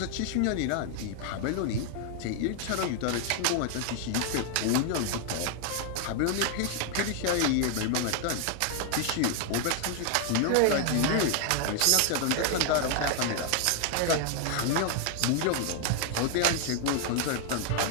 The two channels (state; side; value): different; both; correlation 0.00